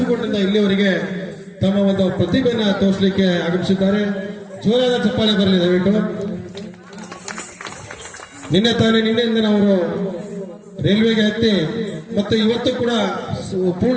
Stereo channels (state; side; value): identical; both; correlation 1.00